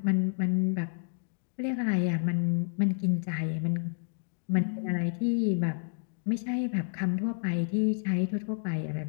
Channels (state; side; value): silent; right; digital silence